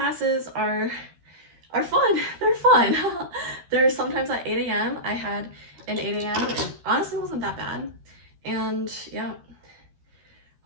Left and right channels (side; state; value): left; late; 13 ms